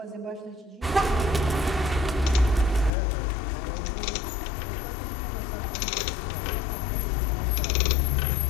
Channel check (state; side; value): drops out; right; at 2.9 s